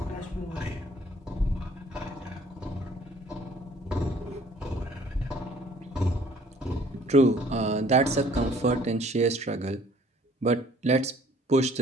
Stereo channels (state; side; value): normal; both; correlation 0.56